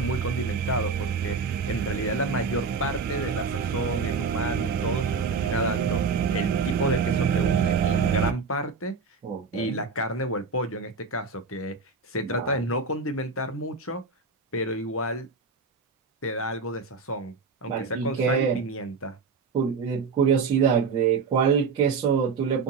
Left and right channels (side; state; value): left; quieter; 4.8 dB